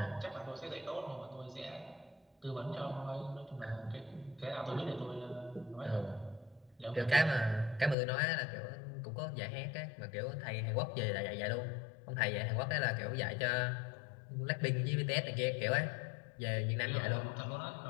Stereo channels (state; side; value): drops out; right; at 8.0 s